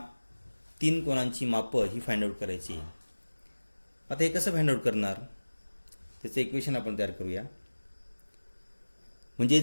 तीन कोनांची मापं ही फाइंड आउट करायची आहे. आता हे कसं फाइंड आउट करणार त्याचं इक्वेशन आपण तयार करूया. म्हणजे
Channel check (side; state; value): both; inverted; correlation -1.00